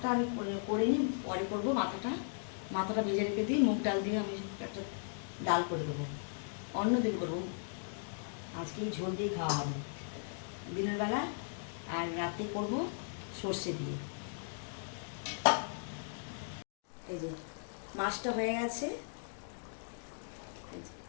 আমি করে নিই, পরে করবো। মাথাটা ভেজে রেখে দিই, মুগ ডাল দিয়ে আমি একটা ডাল করে দেবো। অন্য দিন করবো, আজকে এই ঝোল দিয়ে খাওয়া হবে দিনের বেলা, আর রাতে করবো সর্ষে দিয়ে। এই যে মাছটা হয়ে গেছে,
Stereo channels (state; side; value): silent; right; digital silence